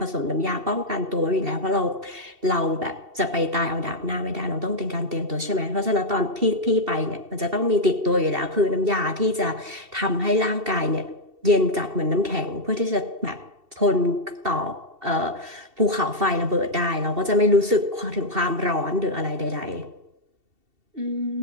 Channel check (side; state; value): left; late; 2.7 ms